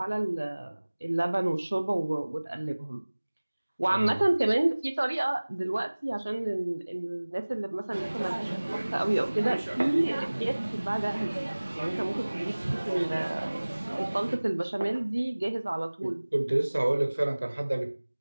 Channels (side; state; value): both; inverted; correlation -1.00